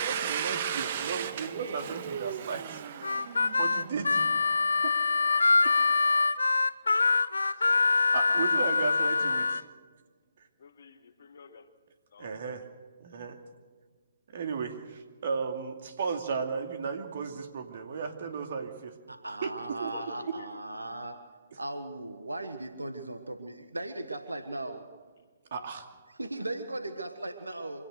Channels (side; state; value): both; inverted; correlation -0.86